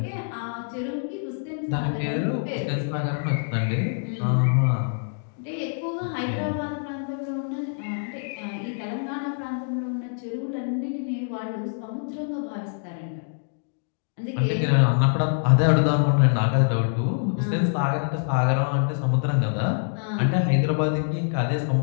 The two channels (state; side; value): silent; right; digital silence